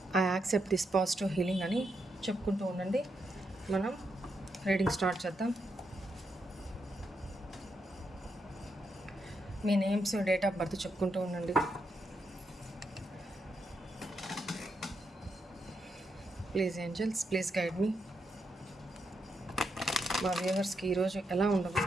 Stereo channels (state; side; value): normal; both; correlation 0.81